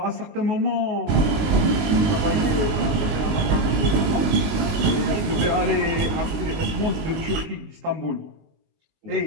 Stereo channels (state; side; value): late; left; 19 ms